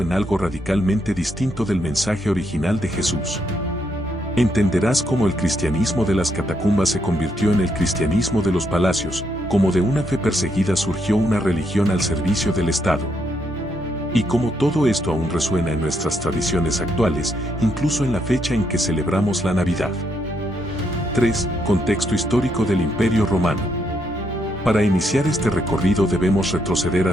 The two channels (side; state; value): both; normal; correlation 0.76